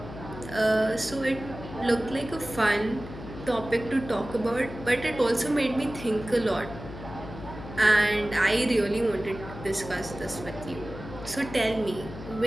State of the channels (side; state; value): left; noise; hum, 12 dB below the sound